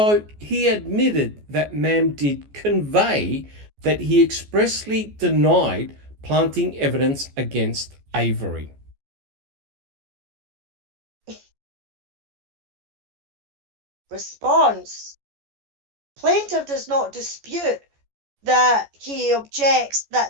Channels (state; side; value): late; left; 14 ms